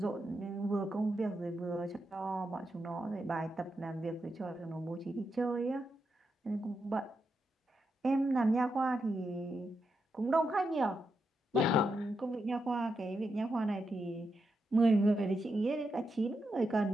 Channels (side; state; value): both; normal; correlation 0.85